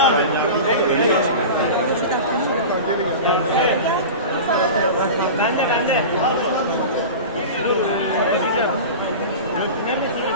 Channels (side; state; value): both; inverted; correlation -0.30